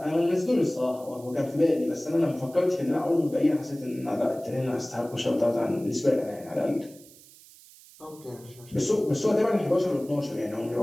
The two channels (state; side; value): noise; right; hiss, 23 dB below the sound